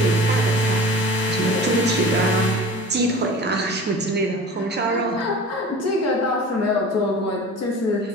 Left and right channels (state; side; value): normal; both; correlation 0.38